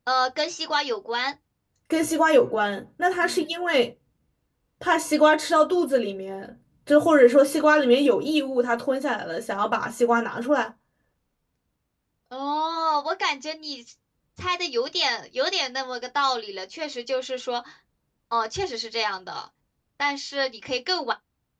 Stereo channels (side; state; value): both; identical; correlation 1.00